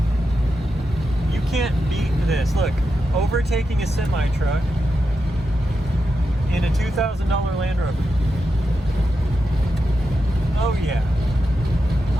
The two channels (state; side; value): normal; both; correlation 0.87